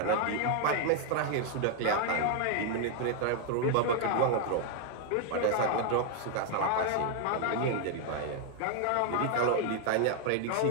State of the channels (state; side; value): different; both; correlation 0.00